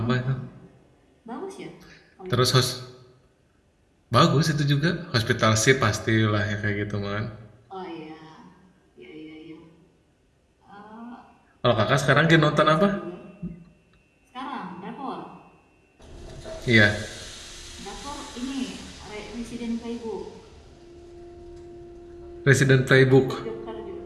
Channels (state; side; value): identical; both; correlation 1.00